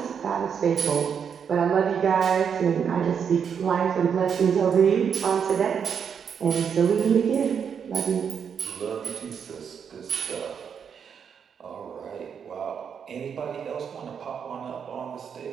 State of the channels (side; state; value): left; quieter; 7.2 dB